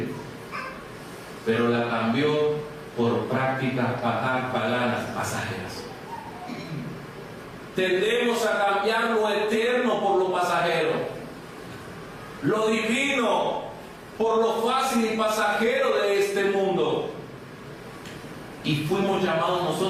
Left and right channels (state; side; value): identical; both; correlation 1.00